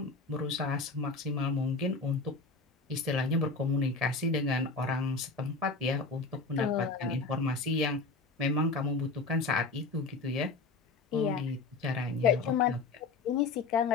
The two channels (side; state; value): right; quieter; 4.0 dB